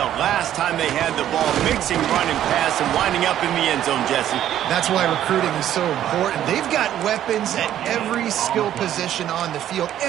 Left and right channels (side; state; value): left; quieter; 11.5 dB